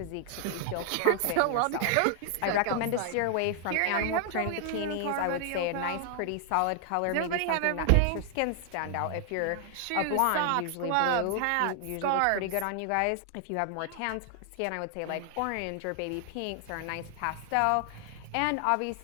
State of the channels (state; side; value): different; both; correlation 0.00